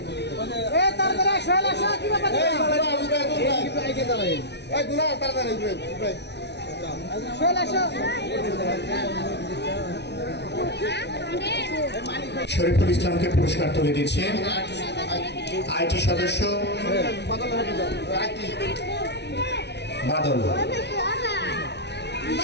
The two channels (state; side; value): late; right; 0.50 ms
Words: শরীফুল ইসলামকে পুরস্কার তুলে দিচ্ছে আইটি সদস্য বাদল,